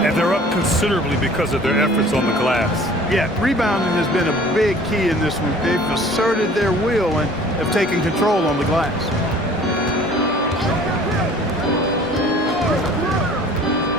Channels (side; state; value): both; normal; correlation 0.50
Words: they're up considerably because of their efforts on the glass. Yeah, rebounding has been a big key in this one. They've asserted their will and have taken control on the glass.